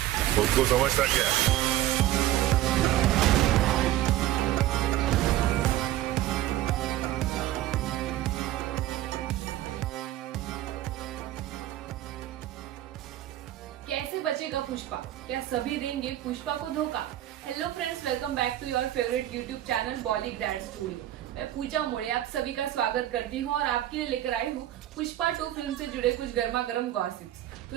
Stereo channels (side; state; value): left; quieter; 13.9 dB